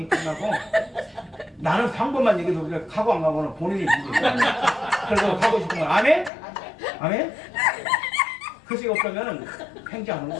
끝나고 나는 방법만 얘기해도 그래 가고 안 가고는 본인이 문제야. 그래서 가고 싶은 건 아멘? 아멘? 그것이 없다면 행지하는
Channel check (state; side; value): drops out; right; at 6.3 s